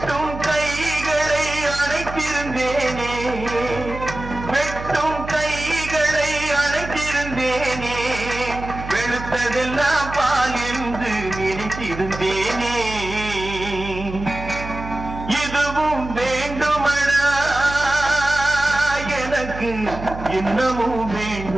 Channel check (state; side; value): noise; right; hum, 10 dB below the sound